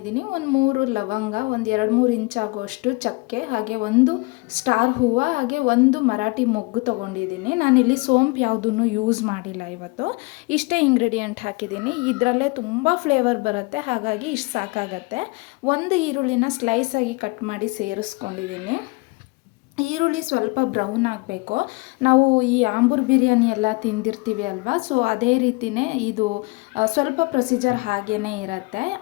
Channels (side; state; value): right; quieter; 26.5 dB